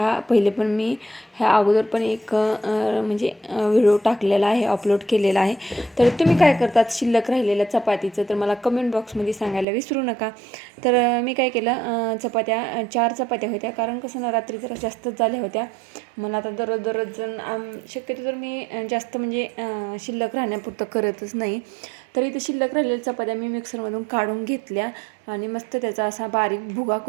पहिले पण मी ह्या अगोदर पण एक म्हणजे व्हिडिओ टाकलेला आहे, अपलोड केलेला आहे. तर तुम्ही काय करतात शिल्लक राहिलेल्या चपातीचं तर मला कमेंट बॉक्समध्ये सांगायला विसरू नका. तर मी काय केलं, चपात्या 4 चपात्या होत्या, कारण कसं ना रात्री जरा जास्तच झाल्या होत्या. मला आता दररोज शक्यतो तर मी जास्त म्हणजे शिल्लक राहण्यापुरतं करतच नाही. तर इथं शिल्लक राहिलेल्या चपात्या मी मिक्सरमधून काढून घेतल्या आणि मस्त त्याचा असा बारीक भुगा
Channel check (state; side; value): drops out; left; at 9.7 s